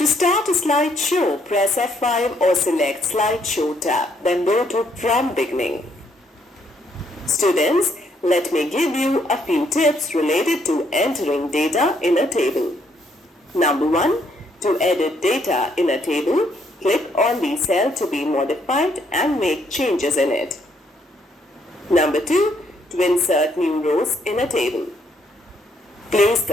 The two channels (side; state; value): both; normal; correlation 0.71